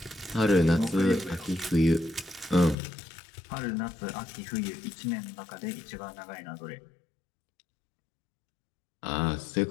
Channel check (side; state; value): right; drops out; at 2.8 s